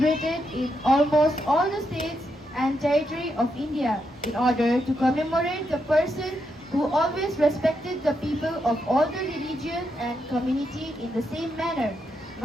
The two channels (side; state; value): both; normal; correlation 0.82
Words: in almost all the states and territory of India in order to commemorate the person who always respected the people of all the religion and community in the same manner.